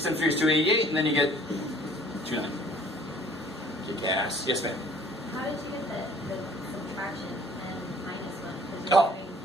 times 3 is 288, and then you get 290. Kick ass. Yes, ma'am. How did you get the subtraction and minus 1? Oh,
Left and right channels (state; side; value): normal; both; correlation 0.54